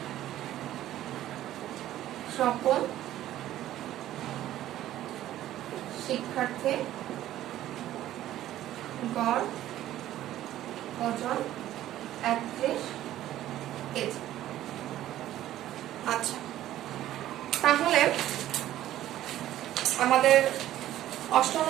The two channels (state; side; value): quieter; left; 13.3 dB